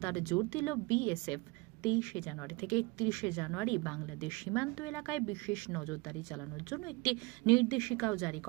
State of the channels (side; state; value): left; quieter; 25.0 dB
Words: জোর দিল বিএসএফ। 23 জানুয়ারি থেকে 31 জানুয়ারি বাংলাদেশ সীমান্ত এলাকায় বিশেষ নজরদারি চালানোর জন্য একটি নির্দেশিকাও জারি